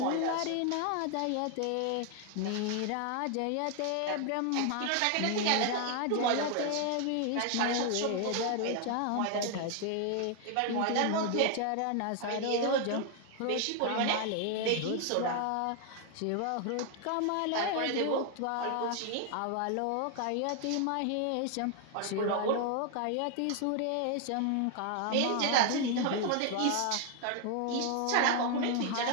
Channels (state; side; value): different; both; correlation 0.00